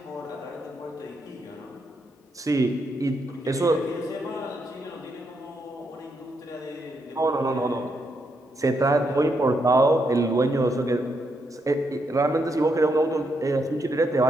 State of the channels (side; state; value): both; normal; correlation 0.79